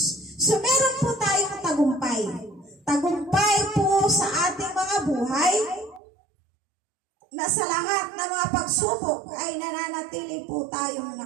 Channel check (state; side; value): drops out; left; at 6.0 s